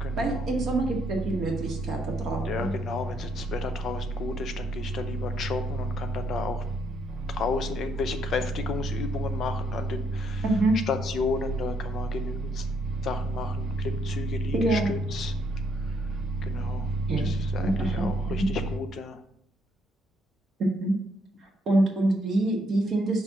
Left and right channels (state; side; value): normal; both; correlation 0.71